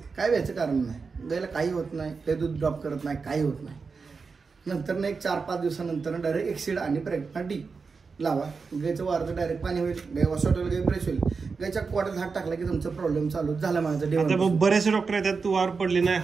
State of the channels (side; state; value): left; quieter; 4.9 dB